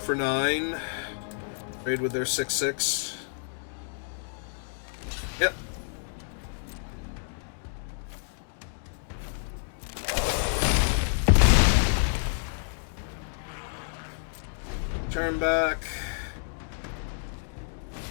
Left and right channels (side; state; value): right; silent; digital silence